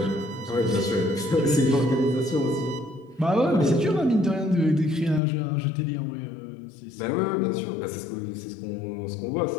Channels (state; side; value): drops out; right; at 5.2 s